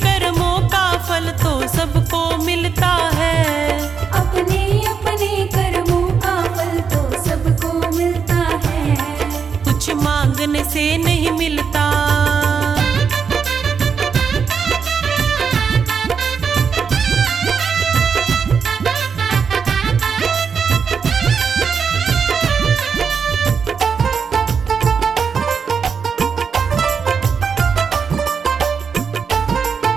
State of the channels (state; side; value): quieter; left; 6.2 dB